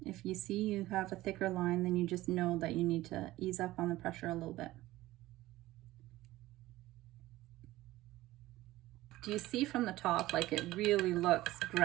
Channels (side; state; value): left; quieter; 16.9 dB